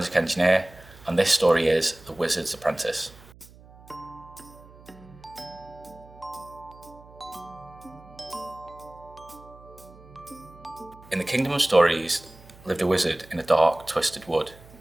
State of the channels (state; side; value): noise; right; hum, 22 dB below the sound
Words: engineer, and this story is The Wizard's Apprentice. In the Kingdom of Stories lived a wizard in a dark, twisted wood.